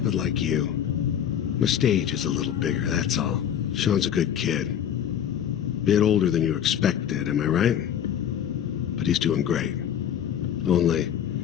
like you. My stage is a little bigger, that's all. Sean's a good kid. Bit older than you expected, am I right? But he's doing great. Only,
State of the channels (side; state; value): right; quieter; 9.5 dB